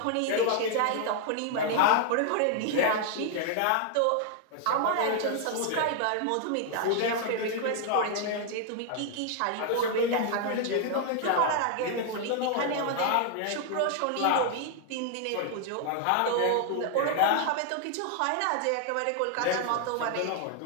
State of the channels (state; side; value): different; both; correlation 0.00